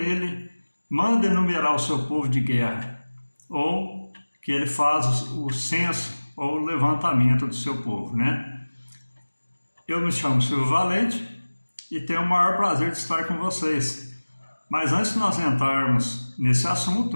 manda enumerar o seu povo de guerra, ou que ele faz o censo ou o levantamento do seu povo, né? Eu me chamo Silvio Valente e tenho o maior prazer de estar com vocês. Mas antes de nós entrarmos nesse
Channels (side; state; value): both; inverted; correlation -1.00